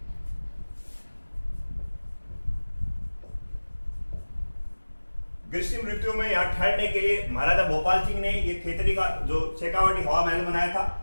ग्रीष्म ऋतु में यहां ठहरने के लिए महाराजा भोपाल सिंह ने ये खेतड़ी का जो शेखावाटी हवा महल बनाया था।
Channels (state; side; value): inverted; both; correlation -1.00